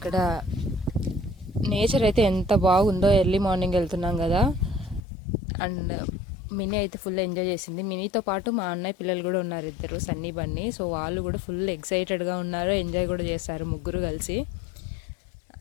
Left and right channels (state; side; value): drops out; right; at 5.0 s